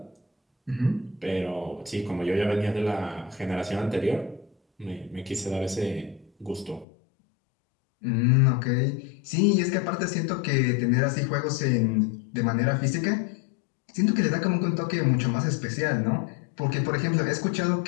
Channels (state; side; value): drops out; right; at 6.9 s